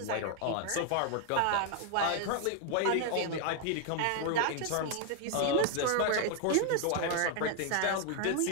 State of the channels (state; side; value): different; both; correlation 0.00